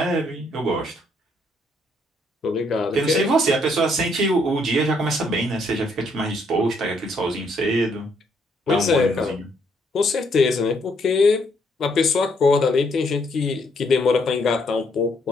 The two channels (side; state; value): both; normal; correlation 0.71